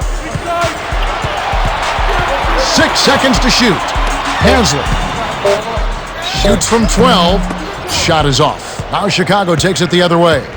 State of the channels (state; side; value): identical; both; correlation 1.00